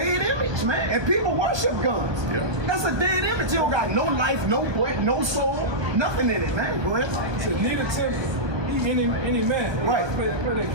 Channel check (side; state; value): left; late; 1.2 ms